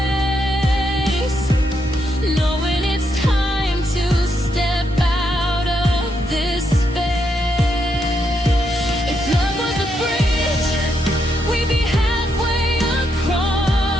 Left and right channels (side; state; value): both; normal; correlation 0.80